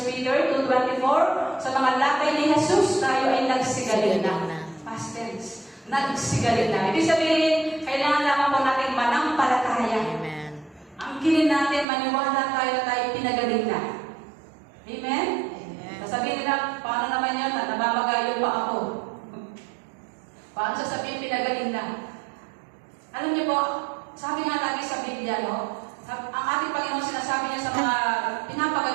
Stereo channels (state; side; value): drops out; left; at 11.9 s